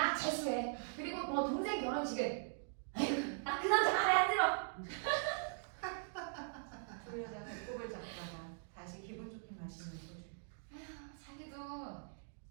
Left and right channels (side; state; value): left; silent; digital silence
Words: 재수해. 그리고 뭐 동생 결혼식은 나 그 남자 마음에 안 들어. 두 여자 배꼽을 잡다가 다시 기분 좋게 마시는 소주. 자기도